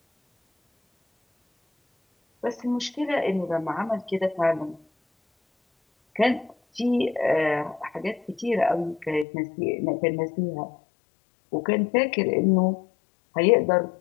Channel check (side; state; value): right; drops out; at 9.2 s